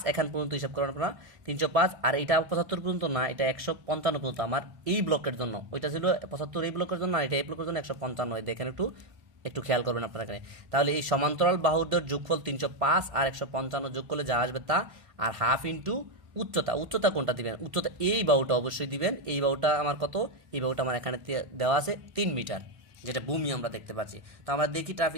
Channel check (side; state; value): left; late; 1.6 ms